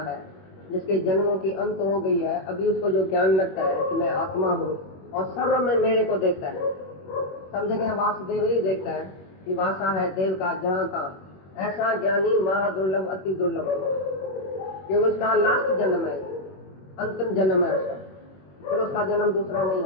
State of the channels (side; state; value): right; late; 21 ms